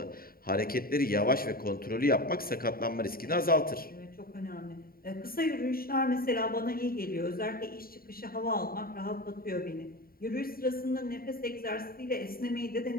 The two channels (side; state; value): right; late; 0.43 ms